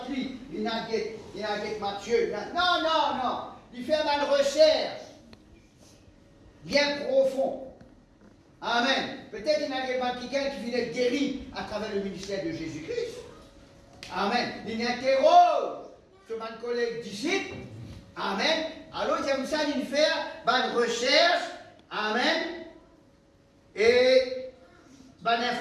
il n'a pas Matthieu. Non. Il fait une recherche bien profonde. Amen. Peut-être qu'il n'a pas quelqu'un qui vient être guéri à travers le ministère de Jésus-Christ. Amen. Il interroge sur mon collègue disciple. Amen. Alors, il aime ça, il fait une recherche. Amen. Et une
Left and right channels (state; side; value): identical; both; correlation 1.00